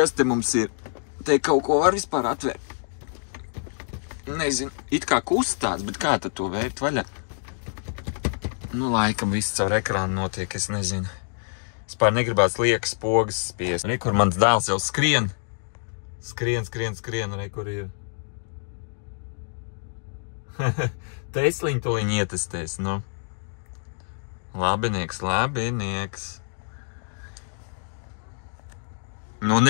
te mums ir? Te kaut ko var vispār atvērt? Nezinu, it kā kustās, bet kā tad to vērt vaļā? Nu, laikam viss caur ekrānu notiek, es nezinu. Spār negribās liekas pogas spiest. Rekur mans dēls jau skrien. Skrien, rekur ir. Tesliņu tuliņ ietestēs, nu. Labinieks. Nu,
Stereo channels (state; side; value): silent; right; digital silence